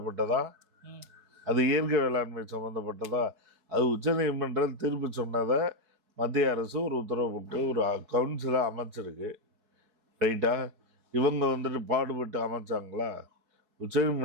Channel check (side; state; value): left; late; 4.7 ms